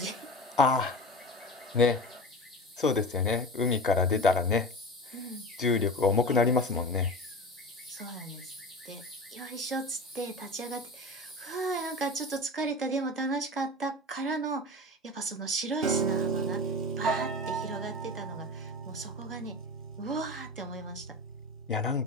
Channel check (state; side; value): normal; both; correlation 0.31